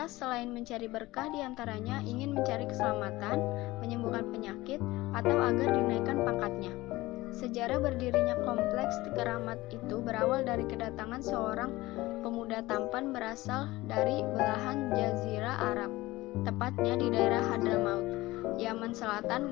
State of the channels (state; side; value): quieter; right; 19.1 dB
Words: selain mencari berkah diantaranya ingin mencari keselamatan, menyembuhkan penyakit, atau agar dinaikkan pangkatnya. Sejarah berdirinya kompleks keramat itu berawal dari kedatangan seorang pemuda tampan berasal dari belahan Jazirah Arab, tepatnya di daerah Hadramaut, Yaman Selatan,